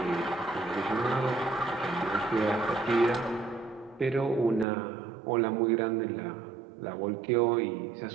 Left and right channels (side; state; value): left; drops out; at 4.7 s